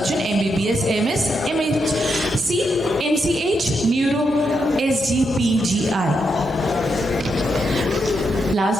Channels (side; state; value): both; normal; correlation 0.82